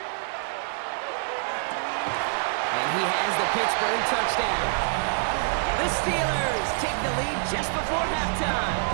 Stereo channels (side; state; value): left; silent; 57 dB below the other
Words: And he has the Pittsburgh touchdown. The Steelers take the lead just before halftime.